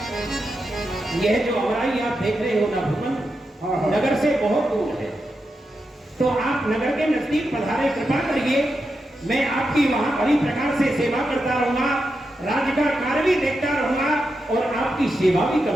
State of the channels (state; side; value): normal; both; correlation 0.87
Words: यह जो अमराई आप देख रहे हो ना भगवान, नगर से बहुत दूर है, तो आप नगर के नजदीक पधारे, कृपा करिए, मैं आपकी वहां बड़ी प्रकार से सेवा करता रहूंगा, राज्य का कार्य भी देखता रहूंगा और आपकी सेवा भी